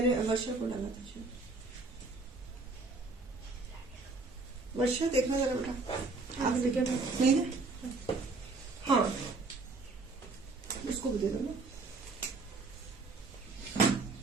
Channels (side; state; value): left; quieter; 3.6 dB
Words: वर्षा को डाला था। वर्षा देखना जरा बेटा, आप नहीं ना? हाँ, उसको भी दे दो ना,